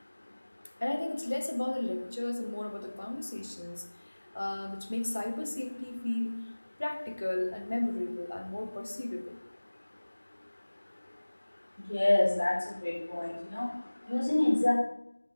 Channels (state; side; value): inverted; both; correlation -1.00